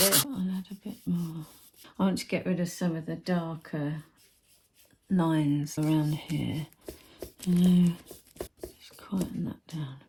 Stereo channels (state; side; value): identical; both; correlation 1.00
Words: I'll add a bit more. I want to get rid of some of the darker lines around here. Just quieten that down